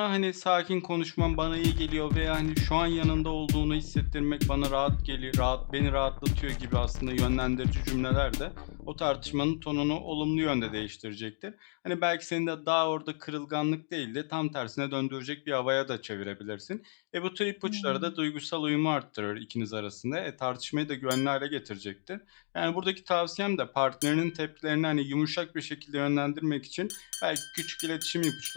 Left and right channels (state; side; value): silent; right; digital silence